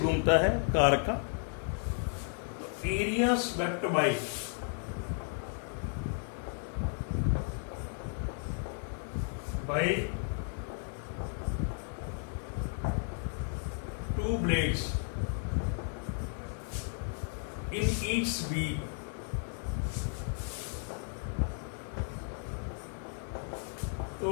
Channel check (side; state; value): right; silent; 55 dB below the other